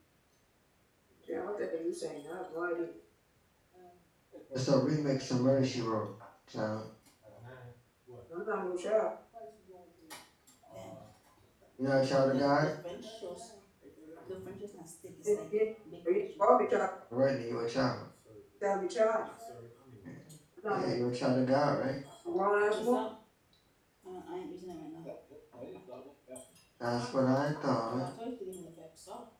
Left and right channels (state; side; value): identical; both; correlation 1.00